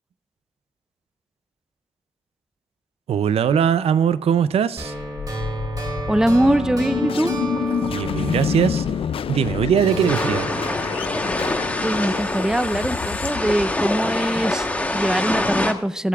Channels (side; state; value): both; normal; correlation 0.73